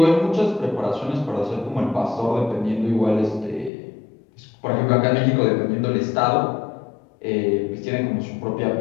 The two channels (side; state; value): right; drops out; at 3.7 s